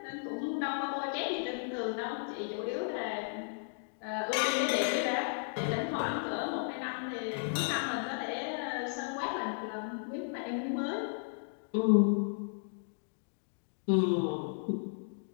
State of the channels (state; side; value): silent; right; digital silence